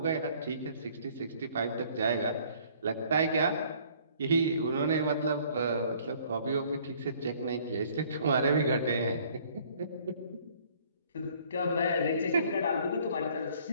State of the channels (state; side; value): inverted; both; correlation -0.58